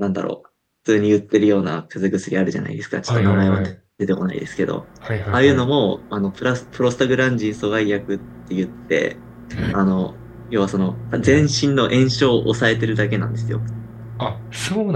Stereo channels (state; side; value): identical; both; correlation 1.00